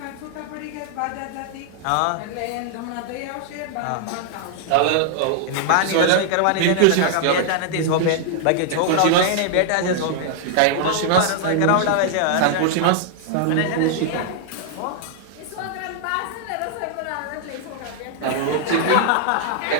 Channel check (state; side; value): different; both; correlation -0.01